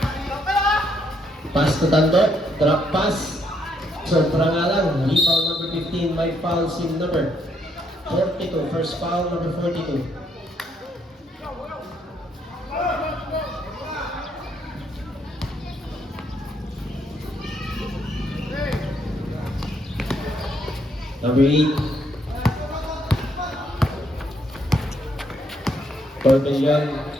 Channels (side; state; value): both; normal; correlation 0.73